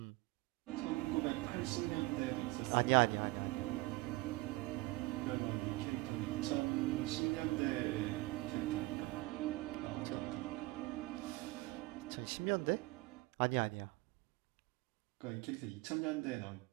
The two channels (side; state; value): left; quieter; 21.4 dB